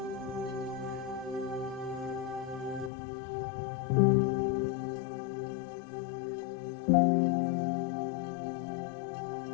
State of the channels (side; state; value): right; drops out; at 2.9 s